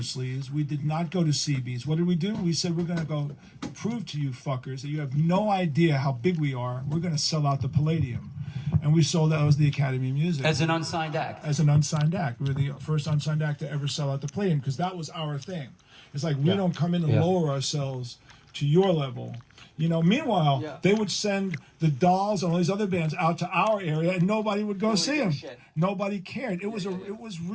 We did not go to CB's. What did we do? We said, we're going to go prove to you fuckers that you have no idea how big we are. We're going to sell out the Palladium. And we sold out. That was the Academy of Music. As an unsigned act. As an unsigned act. We were the first unsigned act to ever sell out the Palladium because that was our thing. It's like, we don't come in and lower ourselves to your level. Meanwhile, they would send the Dolls and all these other bands out to our area, and nobody would go see them. Nobody cared. It was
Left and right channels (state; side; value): identical; both; correlation 1.00